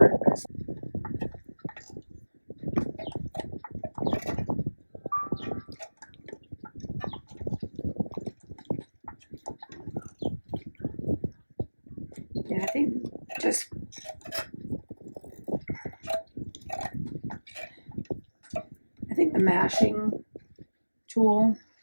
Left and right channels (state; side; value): inverted; both; correlation -1.00